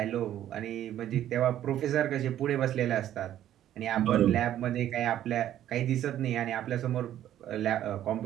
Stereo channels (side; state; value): left; quieter; 11.8 dB